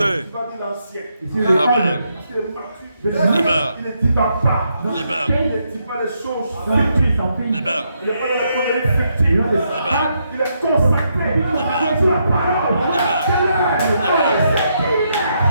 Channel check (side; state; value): both; inverted; correlation -0.78